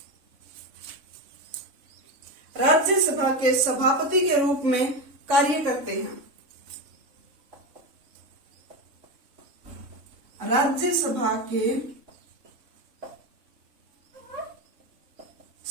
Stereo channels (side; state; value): left; late; 3.6 ms